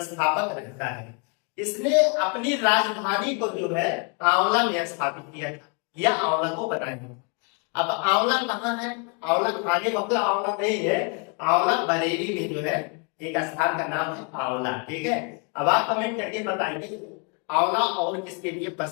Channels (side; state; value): right; quieter; 34.7 dB